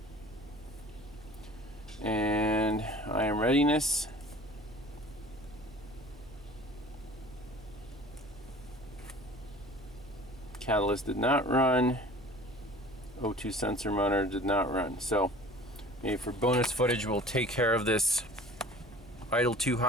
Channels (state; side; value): noise; right; hum, 21 dB below the sound